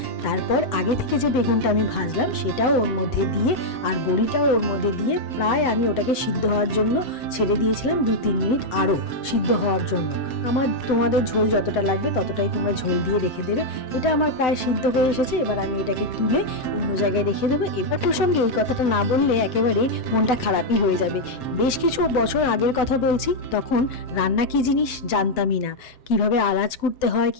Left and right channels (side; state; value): right; late; 7.9 ms